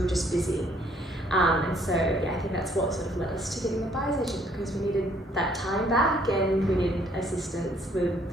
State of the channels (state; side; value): normal; both; correlation 0.64